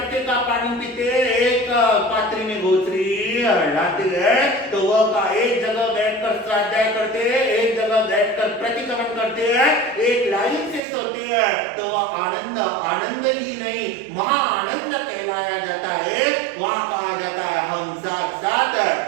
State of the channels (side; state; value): left; drops out; at 10.8 s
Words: का पानी पीते, एक पात्री में गोचरी लाते हैं, तो वह का एक जगह बैठकर स्वाध्याय करते हैं, एक जगह बैठकर प्रतिक्रमण करते हैं, एक लाइन से सोते हैं, तो वह आनंद आनंद ही नहीं महा आनंद कहलाया जाता है। वहां कहा जाता है हम साथ साथ है,